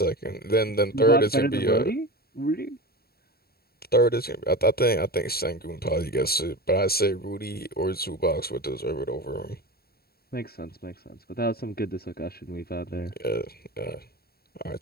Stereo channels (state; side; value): late; right; 0.45 ms